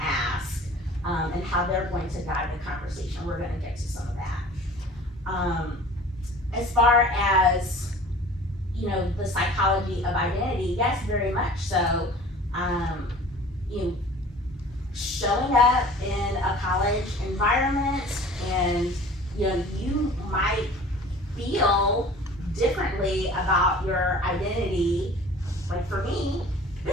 ask, and how they're going to guide the conversation. We're gonna get to some of that. As far as, the psychology of identity, yes, very much so. Showing up in a college environment, and you might feel differently about your identity. Like for me,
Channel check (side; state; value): both; normal; correlation 0.45